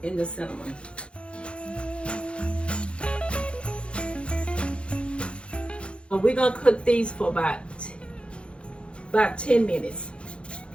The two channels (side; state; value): right; late; 0.058 ms